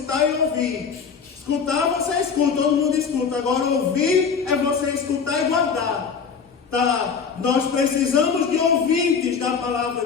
e ouvir. Escutar, você escuta, todo mundo escuta. Agora, ouvir é você escutar e guardar. Tá? Nós precisamos de ouvintes da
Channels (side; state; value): right; quieter; 6.1 dB